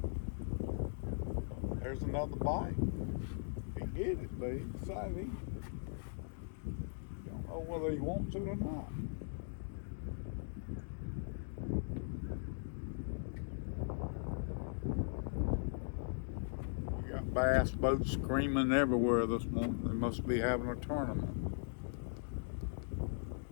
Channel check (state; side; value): silent; right; digital silence